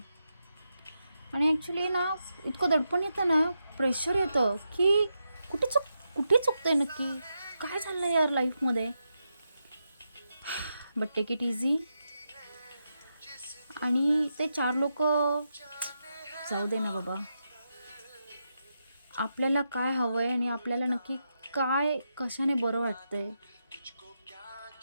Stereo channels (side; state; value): both; inverted; correlation -0.86